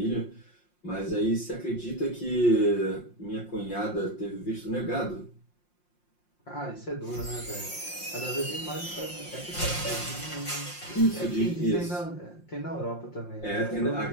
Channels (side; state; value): right; late; 5.6 ms